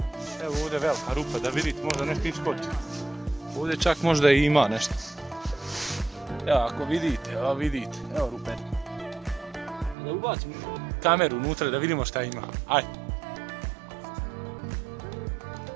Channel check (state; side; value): drops out; left; at 10.0 s